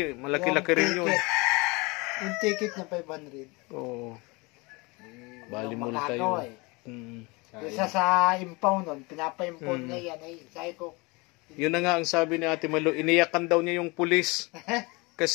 rin yun. Yung ticket na 500. Oo. Bali multa yun. Isa sa impound nun, pinapa-impound na yan. Ay, sabi ko. Yun na nga ang sabi ni Ate Malu, iniyakan daw niya yung pulis.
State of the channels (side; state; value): right; quieter; 26.3 dB